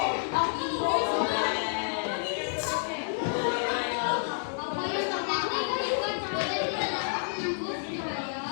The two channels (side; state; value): right; silent; digital silence